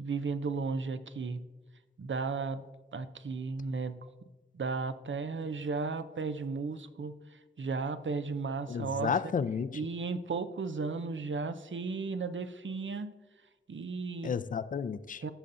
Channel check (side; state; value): both; normal; correlation 0.40